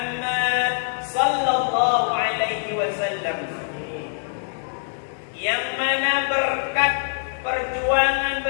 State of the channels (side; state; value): right; silent; 63 dB below the other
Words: sallallahu alaihi wasallam, yang mana berkat perjuangan